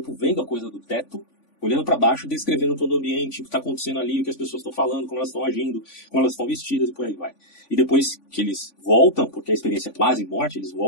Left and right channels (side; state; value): right; late; 3.5 ms